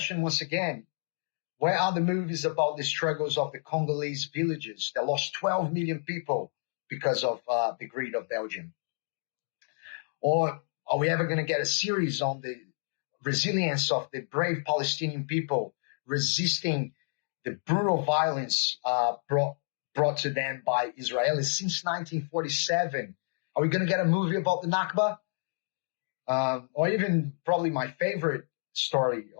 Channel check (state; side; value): silent; right; digital silence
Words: once again, where are the movies about the struggles of the Congolese villages that lost 12 million people because of the greed of Belgium? Or are we ever going to get a series on the resilience of the brave Palestinian people resisting the brutal violence brought to them by Israelis since 1947? Are we going to get a movie about the Nakba? Or even probably my favorite story